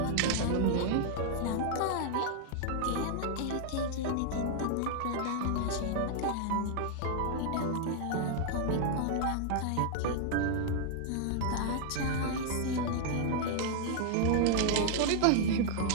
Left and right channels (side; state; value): both; different; correlation -0.01